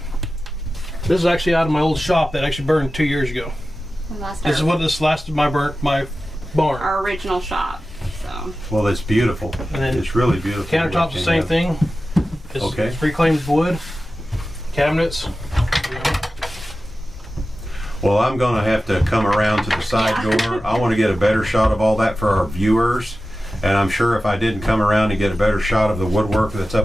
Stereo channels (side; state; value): both; normal; correlation 0.94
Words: This is actually out of my old shop that actually burned 2 years ago. This is what this lasted my barn. Our original shop. So. Well, it's beautiful. And then it's really beautiful. Countertops the same thing. It's reclaimed wood. Cabinets. Well, I'm going to have to come around to the side door. I want to get a better shot of all that for our viewers. And I'm sure if I didn't come around and get a better shot of the woodwork that's